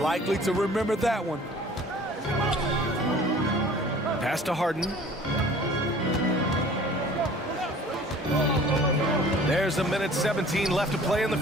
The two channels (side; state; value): both; normal; correlation 0.48